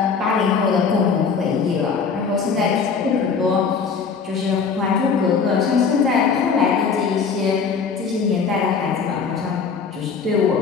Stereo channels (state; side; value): quieter; right; 5.6 dB